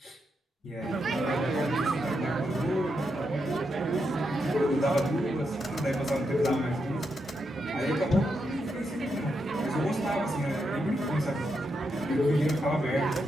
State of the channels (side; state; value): both; normal; correlation 0.83